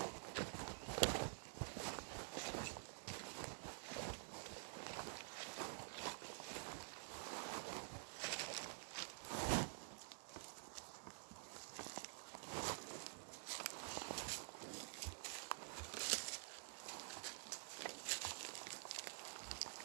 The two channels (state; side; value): silent; left; digital silence